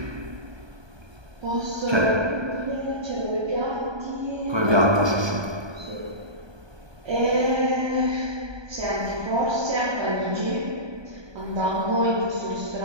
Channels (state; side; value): late; left; 1.2 ms